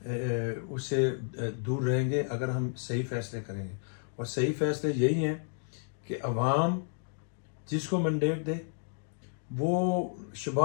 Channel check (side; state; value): right; silent; digital silence